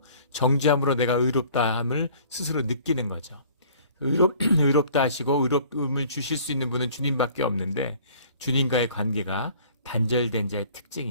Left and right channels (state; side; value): inverted; both; correlation -0.52